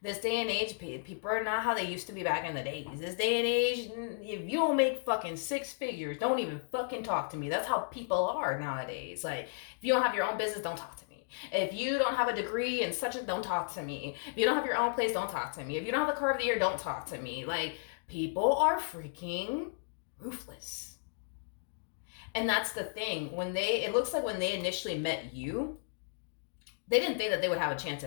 This day and age, people are not how they used to be back in the days. This day and age, if you don't make fucking six figures, don't even fucking talk to me. That's how people are nowadays. Like, if you don't have your own business, don't talk to me. If you don't have a degree and such, don't talk to me. If you don't have your own place, don't talk to me. If you don't have the car of the year, don't talk to me. Like, people are freaking ruthless. And that's the thing. It looks like when they initially met you, they didn't think that they would have a chance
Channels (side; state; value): right; silent; digital silence